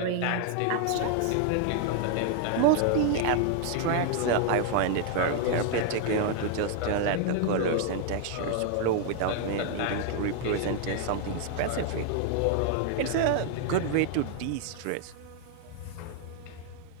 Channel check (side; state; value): both; different; correlation 0.00